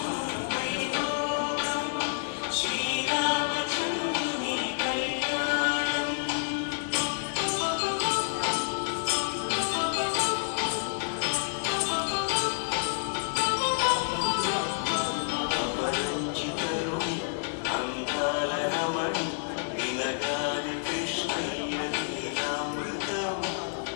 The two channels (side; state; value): right; silent; digital silence